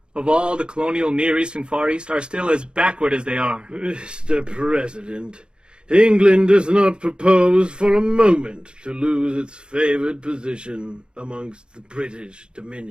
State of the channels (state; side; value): late; left; 0.052 ms